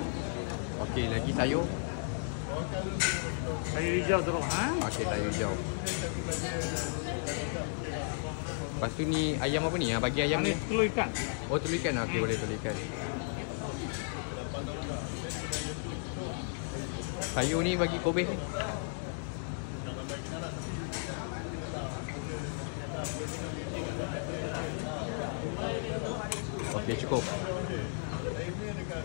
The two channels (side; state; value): right; silent; digital silence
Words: Okey, lagi sayur. Sayur hijau terus ha. Okey, sayur hijau. Lepas tu ni ayam apa ni? Bagi ayam ni. Telur ikan. Oh, telur ikan. Okey, boleh telur ikan. Sayur ni bagi kobis ni. Okey, cukup.